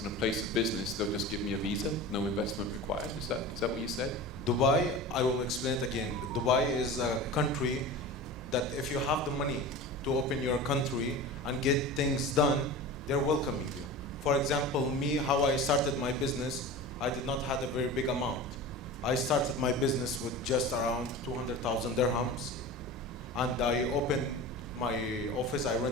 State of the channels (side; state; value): both; normal; correlation 0.32